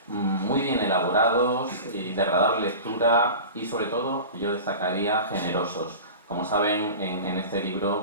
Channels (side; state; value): both; inverted; correlation -0.34